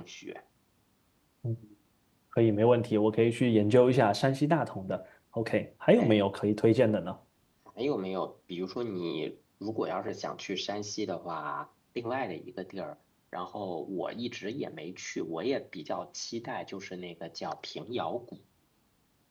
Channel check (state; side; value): identical; both; correlation 1.00